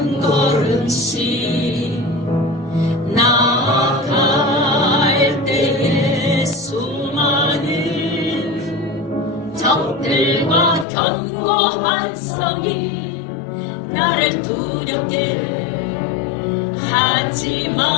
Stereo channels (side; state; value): right; drops out; at 10.9 s